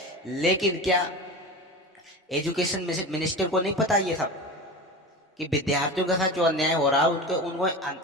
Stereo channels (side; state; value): both; normal; correlation 0.29